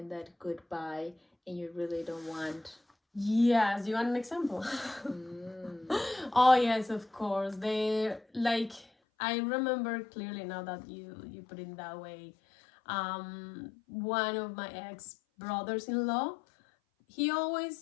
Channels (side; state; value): right; drops out; at 8.8 s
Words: that goodbye and you really don't want? Yes, you want an example? Oh yes, of course. They like I remember clearly now that you put it that way. One of my ex brothers-in-law, he